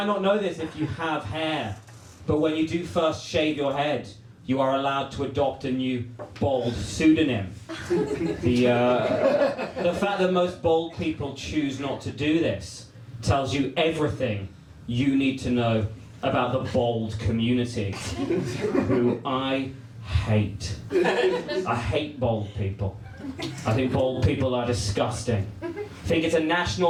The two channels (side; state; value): both; identical; correlation 1.00